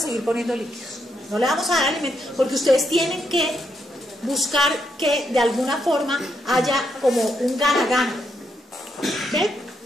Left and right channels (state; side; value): normal; both; correlation 0.79